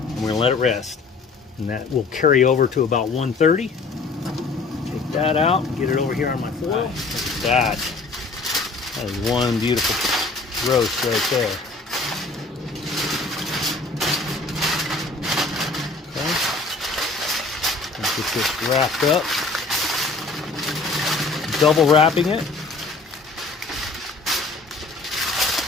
we're going to let it rest. And that will carry over to about 130. Take that out and get it over here on my foil. Look at that. That is one beautiful roast right there. Okay. Let's get this wrapped up. double wrapping it.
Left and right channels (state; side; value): quieter; right; 3.8 dB